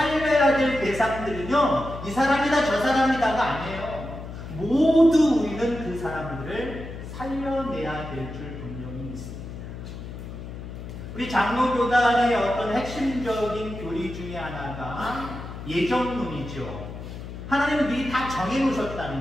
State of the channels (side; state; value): left; noise; hum, 10 dB below the sound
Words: 될 대상들은요, 이 사람이다 저 사람이다가 아니에요. 모두 우리는 그 사람들을 살려내야 될 줄 분명히 믿습니다. 우리 장로교단의 어떤 핵심적인 교리 중에 하나가 예정론이죠. 하나님은 미리 다